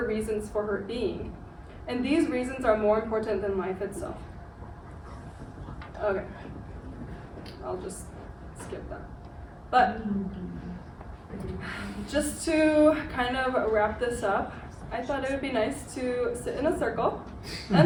reasons for her being. And these reasons are more important than life itself. Okay. I'll just skip that. But just to kind of wrap this up, I thought it would be nice to sit in a circle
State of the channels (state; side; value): identical; both; correlation 1.00